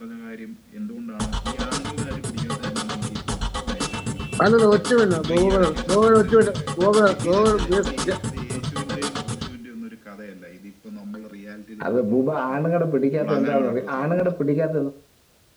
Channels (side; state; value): both; identical; correlation 1.00